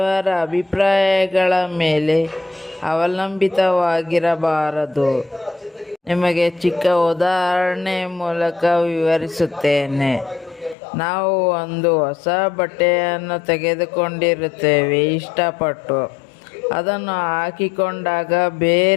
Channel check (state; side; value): drops out; right; at 10.8 s